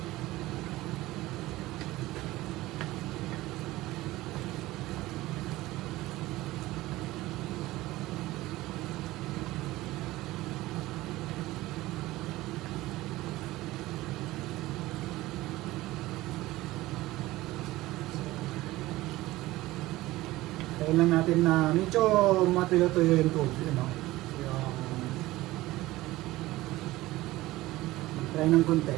Tayo lang natin na medyo matuyo-tuyo yung tubig, no? Yung try ng konti.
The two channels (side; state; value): left; quieter; 17.9 dB